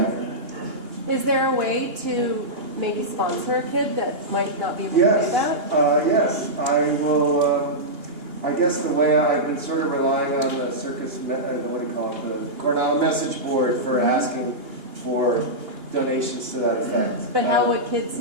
Is there a way to maybe sponsor a kid that might not be able to do Yes, that? yes, I will, I guess the way I've been sort of relying on the circus, what do you call it, the Coronado message board for asking for donations to that effect. But how would kids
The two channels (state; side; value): late; left; 2.9 ms